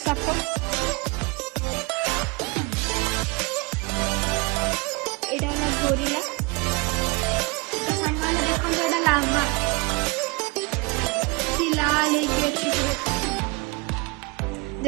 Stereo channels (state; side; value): quieter; left; 27.3 dB